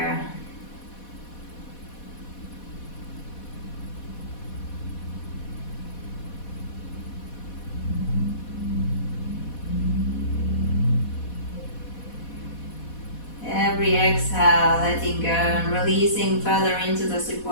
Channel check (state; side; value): late; right; 4.1 ms